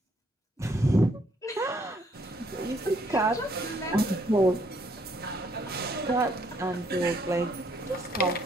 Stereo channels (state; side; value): normal; both; correlation 0.68